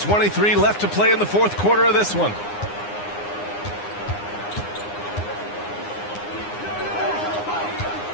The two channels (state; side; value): late; right; 9.7 ms